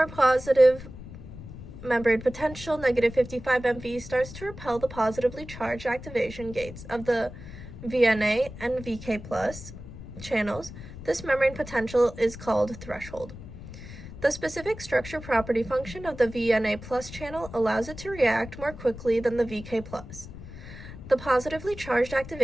positive membrane potential, -55 MV, starts to repel the positively charged activation gates of the VNA and VK+ channels. This membrane potential is called threshold. The specific structure property function of the VNA+ channel allows it to react more quickly than the VK+. The positively charged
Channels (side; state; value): left; noise; rumble, 13 dB below the sound